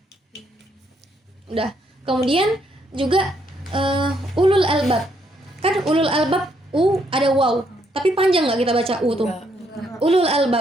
Udah. Kemudian juga ulul albab. Kan ulul albab ada waw, tapi panjang nggak kita baca tuh? Ulul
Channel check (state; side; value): normal; both; correlation 0.73